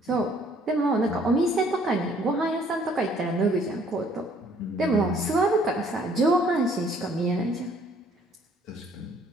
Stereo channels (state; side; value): normal; both; correlation 0.61